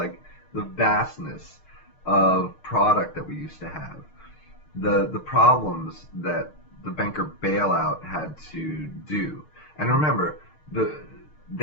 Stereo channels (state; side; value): late; right; 6.5 ms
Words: the vastness of product that we used to have. The problems that the banker bailout had to do. And remember,